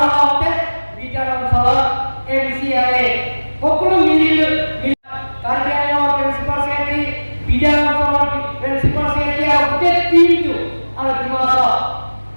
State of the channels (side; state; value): both; inverted; correlation -1.00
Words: লগতে বিপিএল অঞ্চলত এমচিএলএ সকলো মিলি কাৰ্বিআংলঙৰ প্ৰিন্সিপাল ছেক্ৰেটাৰী বিদ্যালয় অঞ্চলৰ প্ৰিন্সিপাল ছেক্ৰেটাৰী আৰু গোটেই টিমটো আৰু